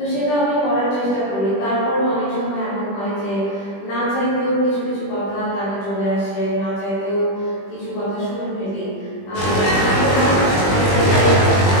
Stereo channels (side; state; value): right; late; 20 ms